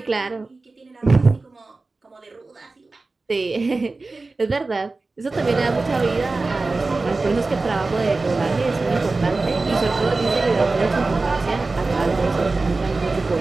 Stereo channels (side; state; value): left; quieter; 3.5 dB